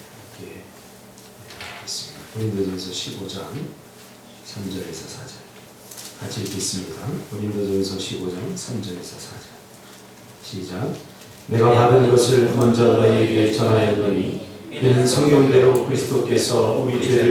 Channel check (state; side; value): identical; both; correlation 1.00